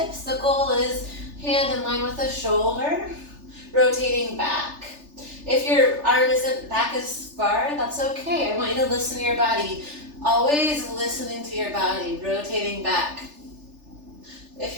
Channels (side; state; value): left; late; 3.4 ms